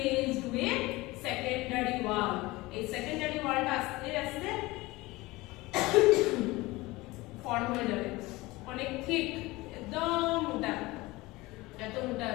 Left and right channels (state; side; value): quieter; right; 20.9 dB